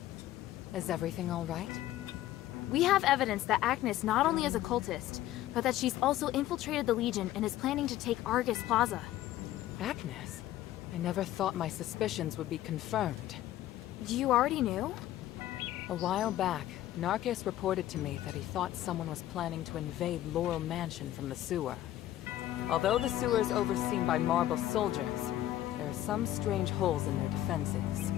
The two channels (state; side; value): quieter; right; 13.7 dB